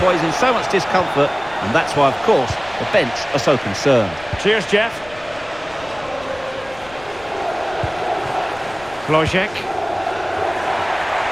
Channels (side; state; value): left; noise; rumble, 22 dB below the sound